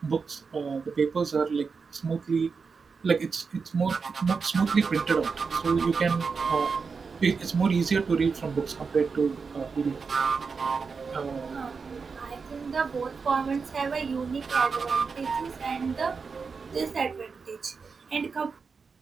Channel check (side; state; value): left; quieter; 5.1 dB